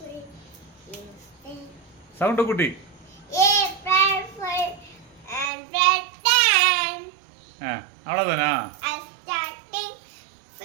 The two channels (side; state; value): left; drops out; at 5.5 s